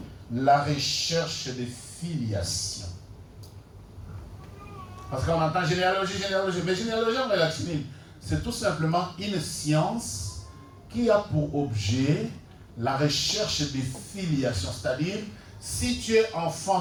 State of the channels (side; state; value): both; identical; correlation 1.00